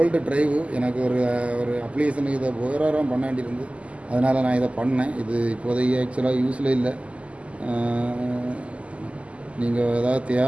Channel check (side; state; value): left; late; 0.061 ms